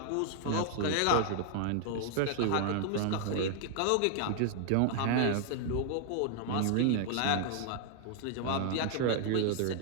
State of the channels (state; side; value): different; both; correlation 0.00